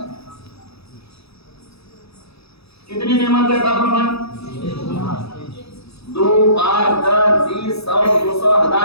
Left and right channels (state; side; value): late; right; 0.78 ms